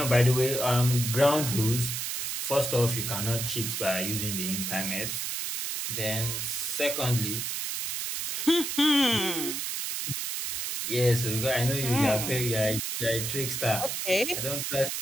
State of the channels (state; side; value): noise; right; hiss, 3 dB below the sound